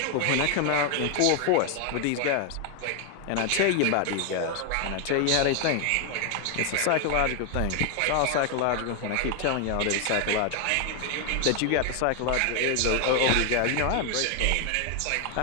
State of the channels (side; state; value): both; different; correlation 0.01